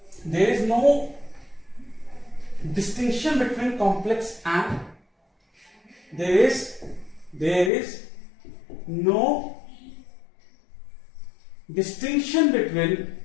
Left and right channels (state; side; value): drops out; right; at 7.7 s